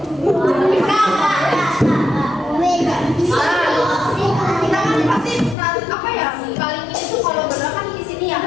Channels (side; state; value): right; drops out; at 5.6 s